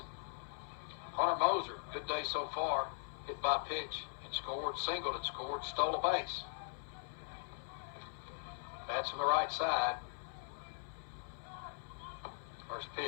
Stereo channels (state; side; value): silent; right; 51 dB below the other